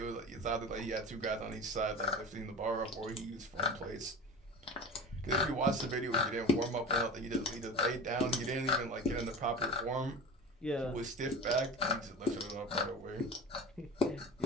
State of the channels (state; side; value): normal; both; correlation 0.32